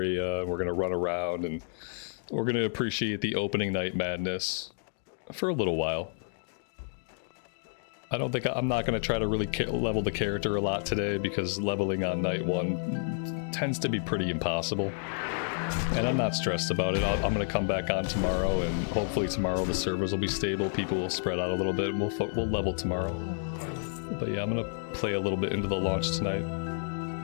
we're gonna run around, and we're gonna appreciate the opening night madness for a little while. I'm not gonna try to really level the character a lot today, because leveling on night 1 tends to be pretty impossible. And I'm not stressed about it. I'm gonna come back on tomorrow, and hopefully tomorrow the servers will be stable, people will spread out a little bit, and we'll level tomorrow. But yeah, I'm gonna play a little bit into the launch tonight.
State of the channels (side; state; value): right; silent; digital silence